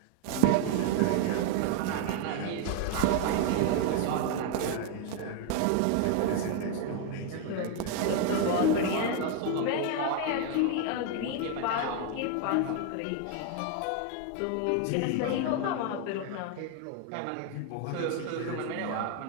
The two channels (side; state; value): both; different; correlation 0.01